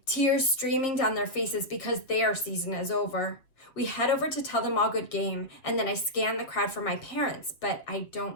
tears streaming down their faces because their season is over. We head over to tell them all good game, and then I scan the crowd for my parents, but I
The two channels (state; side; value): late; right; 7.3 ms